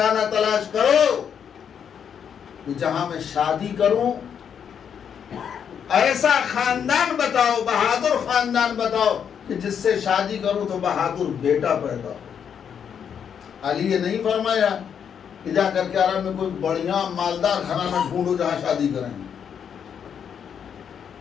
تلاش کرو کہ جہاں میں شادی کروں، ایسا خاندان بتاؤ، بہادر خاندان بتاؤ کہ جس سے شادی کروں تو بہادر بیٹا پیدا ہو. علی یہ نہیں فرمایا کہ جا کر کے عرب میں کوئی بڑھیا مالدار گھرانہ ڈھونڈو جہاں شادی کریں.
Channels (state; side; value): quieter; right; 7.8 dB